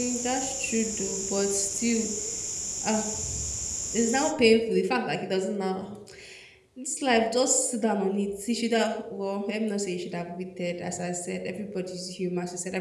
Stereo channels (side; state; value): both; identical; correlation 1.00